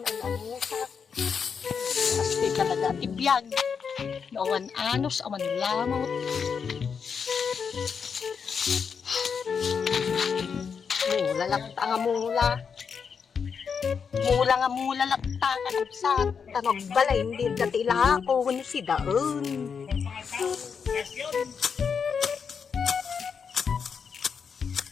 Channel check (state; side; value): quieter; right; 6.3 dB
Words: ang usak. Pasti talaga ti biyag. Nawan anos awan lamot. Mula lakta nga mula. Mula nga mula lakta ka sa tanog balay hindi dati ilako ni si daon.